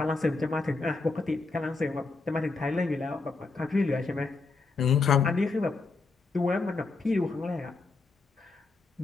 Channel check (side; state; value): right; quieter; 3.9 dB